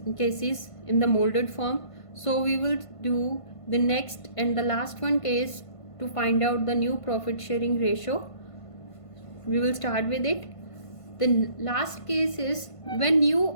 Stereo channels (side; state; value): right; late; 1.5 ms